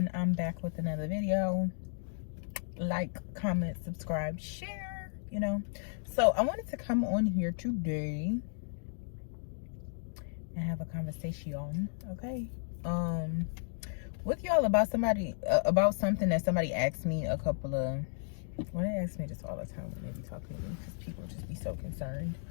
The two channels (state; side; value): silent; right; digital silence